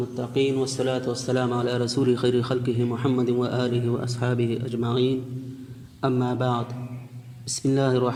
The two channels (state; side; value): identical; both; correlation 1.00